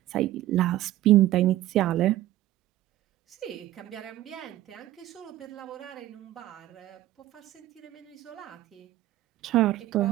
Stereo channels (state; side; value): quieter; left; 14.7 dB